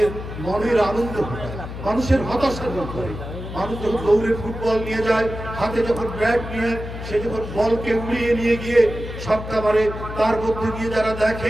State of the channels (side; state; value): left; noise; hum, 9 dB below the sound